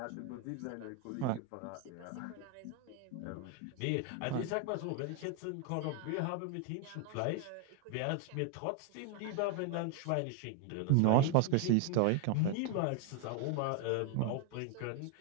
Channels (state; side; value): different; both; correlation 0.01